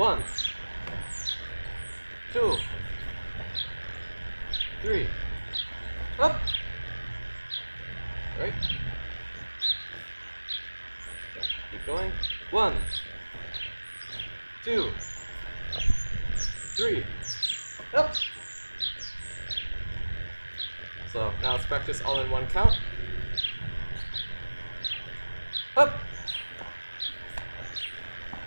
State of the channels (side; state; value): both; inverted; correlation -1.00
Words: 2, 3, up. Right. So keep going. 1, 2, 3, up. So now let's practice all in 1 count. Up.